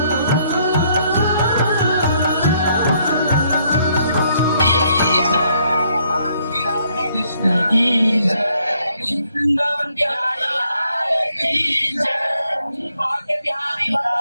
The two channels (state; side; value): inverted; both; correlation -0.70